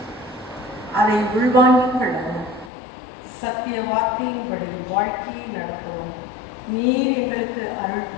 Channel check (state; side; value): drops out; right; at 2.7 s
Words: அதை உள்வாங்கிக் கொள்ளவும் சத்திய வார்த்தையின்படி வாழ்க்கையை நடத்தவும் நீர் எங்களுக்கு அருள்